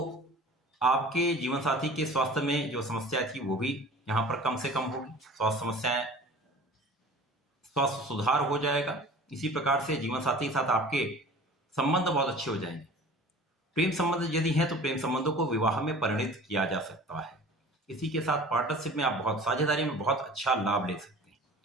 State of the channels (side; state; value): both; normal; correlation 0.43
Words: आपके जीवन साथी के स्वास्थ्य में जो समस्या थी वो भी यहाँ पर कम से कम होगी, स्वास्थ्य सुधार हो जाएगा। इसी प्रकार से जीवन साथी के साथ आपके संबंध बहुत अच्छे हो जाएंगे। प्रेम संबंध यदि है तो प्रेम संबंधों को विवाह में परिणित किया जा सकता है। इसी के साथ पार्टनरशिप में आप बहुत साझेदारी में बहुत अच्छा लाभ ले सकते हैं,